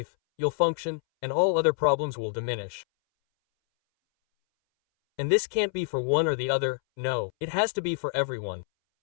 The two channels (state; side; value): silent; right; 60 dB below the other